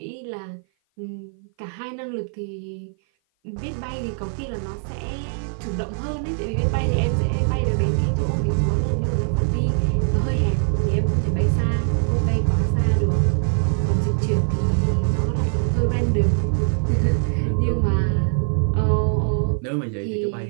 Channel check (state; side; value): silent; left; 56 dB below the other